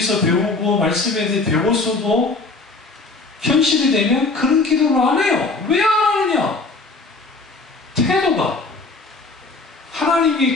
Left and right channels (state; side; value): quieter; right; 3.5 dB